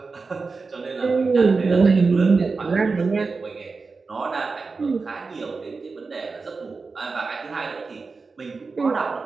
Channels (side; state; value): left; quieter; 4.3 dB